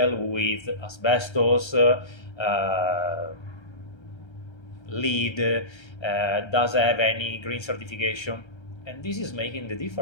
with asbestos, LEED, does have any green certification? And this is making the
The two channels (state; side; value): late; right; 1.3 ms